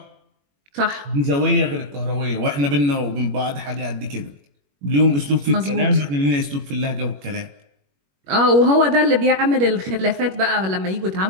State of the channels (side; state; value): left; late; 21 ms